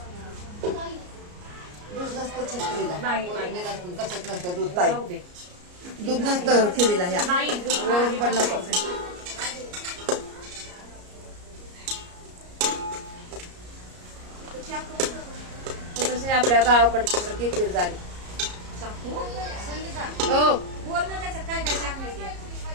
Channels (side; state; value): left; late; 34 ms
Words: दूध नसतं खिरीला. नाही. वरून नसतं, कशात नसतं दूध ताई. जाऊ दे. दूध नसतं खिरीला ह्या. नाही. वरून पण नको. ते कसे आपल्या गावाकडची सारखी खीर झाली. हो